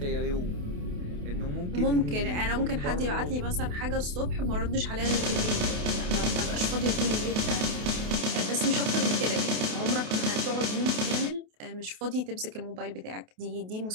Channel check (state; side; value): late; left; 28 ms